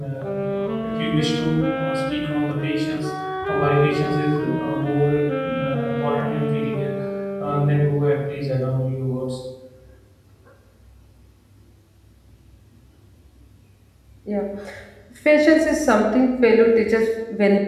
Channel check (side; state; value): both; identical; correlation 1.00